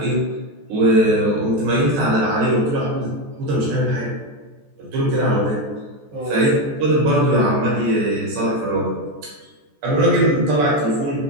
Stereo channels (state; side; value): late; left; 14 ms